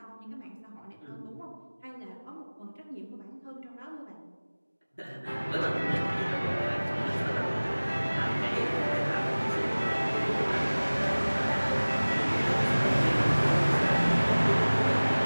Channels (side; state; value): both; inverted; correlation -1.00